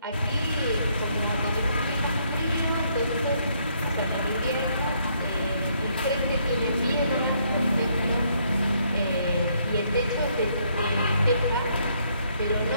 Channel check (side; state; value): both; inverted; correlation -0.71